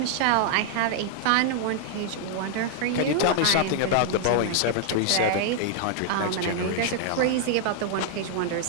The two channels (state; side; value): different; both; correlation 0.00